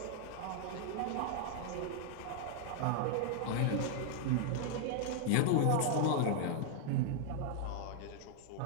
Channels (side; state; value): both; different; correlation 0.00